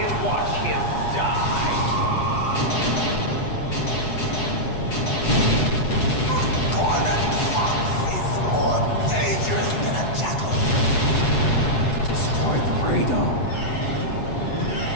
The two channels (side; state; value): right; late; 7.9 ms